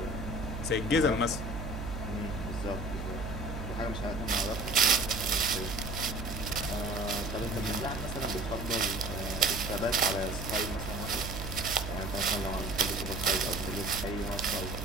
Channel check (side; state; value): right; noise; hum, 6 dB below the sound